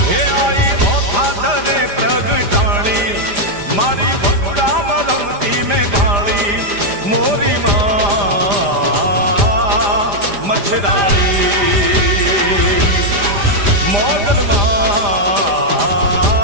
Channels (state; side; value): late; left; 5.0 ms